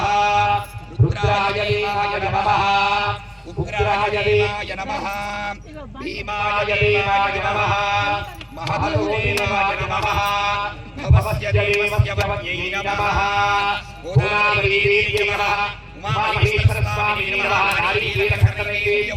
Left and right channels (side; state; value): both; identical; correlation 1.00